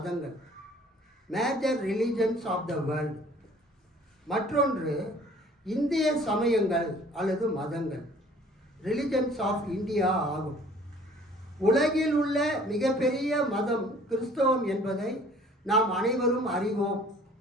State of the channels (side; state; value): both; normal; correlation 0.53